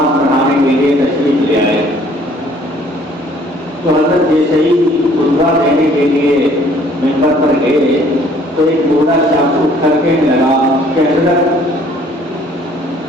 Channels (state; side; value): normal; both; correlation 0.58